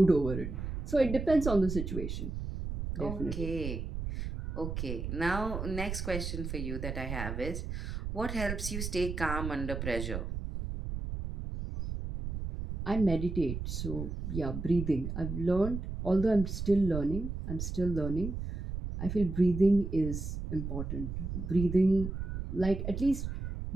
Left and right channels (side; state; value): right; noise; rumble, 5 dB below the sound